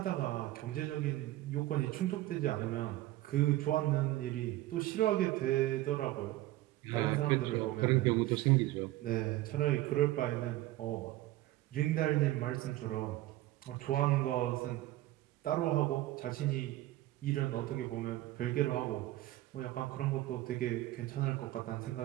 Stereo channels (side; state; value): left; quieter; 16.3 dB